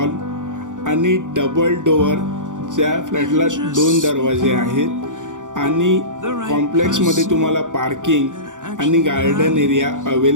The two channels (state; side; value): late; left; 0.87 ms